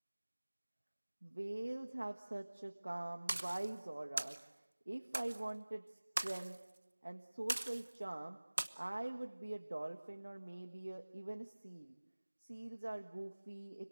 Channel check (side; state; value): both; inverted; correlation -1.00